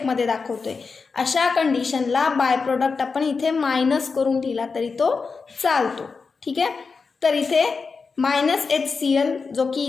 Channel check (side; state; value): right; quieter; 4.8 dB